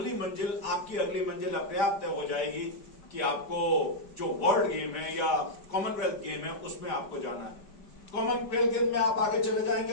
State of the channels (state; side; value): late; right; 5.1 ms